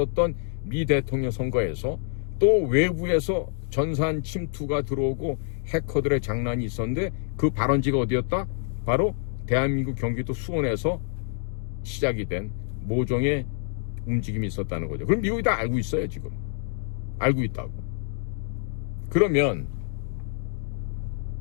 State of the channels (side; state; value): right; silent; digital silence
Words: 미 대통령 선거에서 또 외부에서 전산 침투가 들어오고 해커들의 장난이 있었는데 그 발원지가 어디였다? 바로 대한민국 경기도 수원에서 시작이 된 모종의 움직임이 있었다는 거죠. 그럼 미국이 다 알고 있어요. 지금 알고 있다고. 그러면